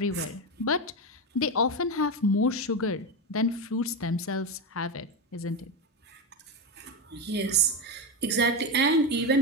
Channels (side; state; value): both; normal; correlation 0.14